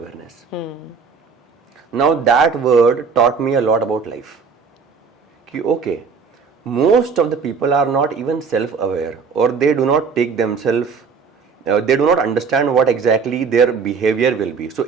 Now that word taught me a lot about life. कि okay, most of the people are not even self-aware, or they do not take themselves, they do not understand what exactly their behavior will be. So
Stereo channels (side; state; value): left; quieter; 5.6 dB